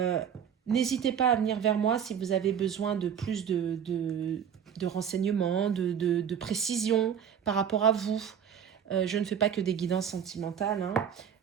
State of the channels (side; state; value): left; quieter; 8.3 dB